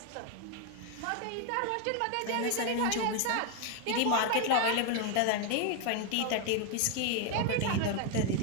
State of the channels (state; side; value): different; both; correlation 0.01